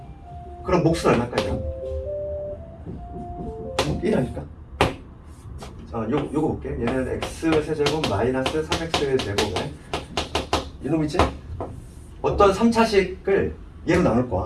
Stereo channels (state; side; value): identical; both; correlation 1.00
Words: 그럼 몫은 얼마까지야? 1하니까. 요거 볼게. 얘는 x 세제곱 마이너스 3x 제곱에 이놈이지? 어떤 3차식을 얘로 나눌